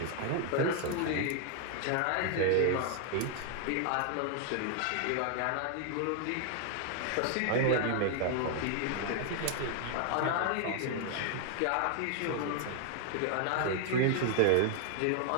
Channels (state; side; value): different; both; correlation 0.00